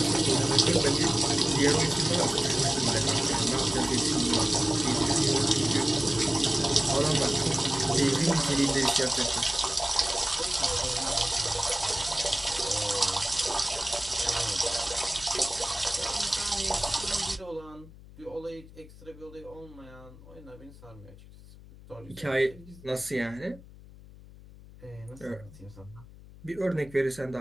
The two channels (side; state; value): left; noise; hum, 20 dB below the sound